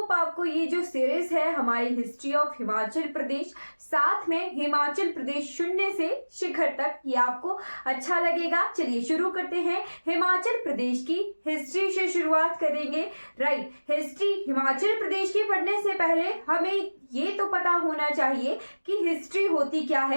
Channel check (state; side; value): inverted; both; correlation -1.00